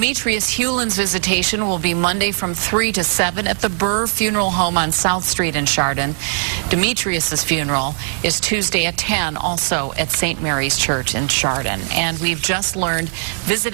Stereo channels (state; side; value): silent; left; digital silence